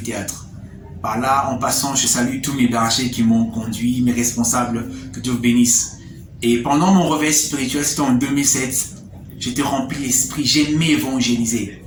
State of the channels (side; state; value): both; identical; correlation 1.00